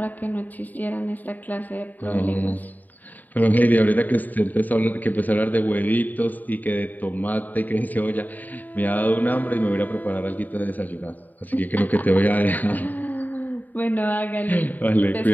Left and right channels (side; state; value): right; late; 0.085 ms